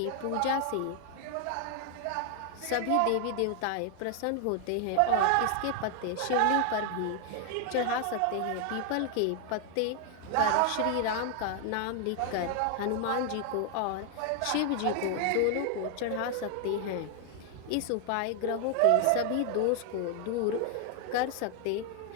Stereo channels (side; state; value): both; different; correlation 0.00